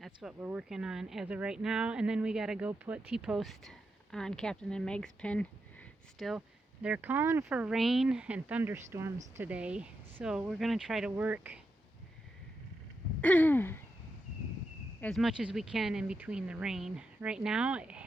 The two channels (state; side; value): normal; both; correlation 0.86